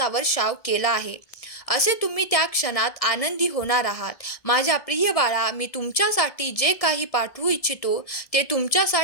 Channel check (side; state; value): right; late; 1.7 ms